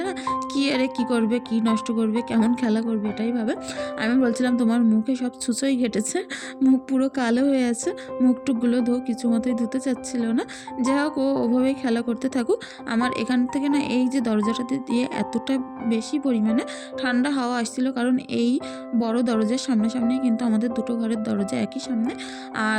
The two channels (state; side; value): identical; both; correlation 1.00